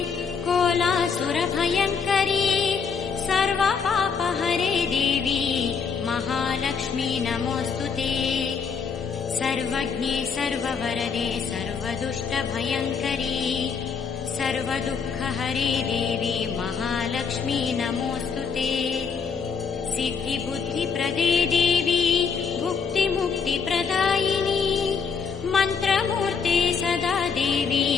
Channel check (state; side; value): quieter; right; 5.9 dB